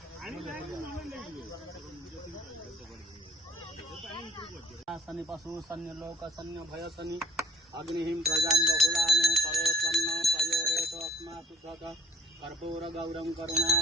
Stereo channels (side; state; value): both; normal; correlation 0.56